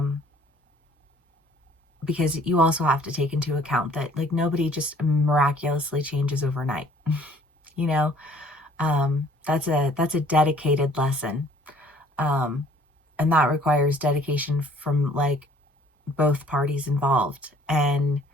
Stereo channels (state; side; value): normal; both; correlation 0.56